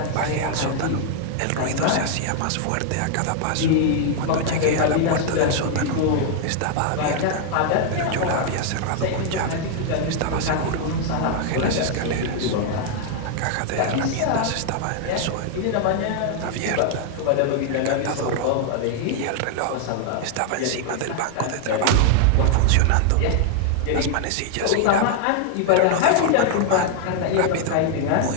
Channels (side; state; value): both; different; correlation 0.00